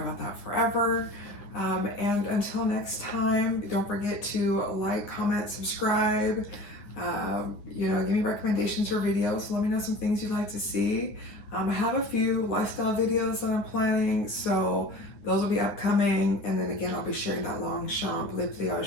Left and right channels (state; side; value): late; right; 9.9 ms